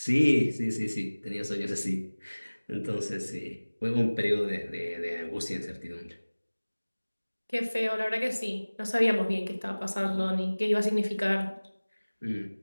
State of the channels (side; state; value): both; inverted; correlation -1.00